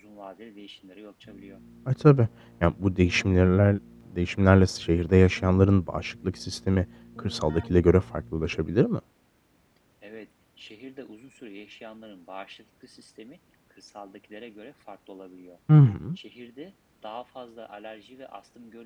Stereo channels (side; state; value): both; identical; correlation 1.00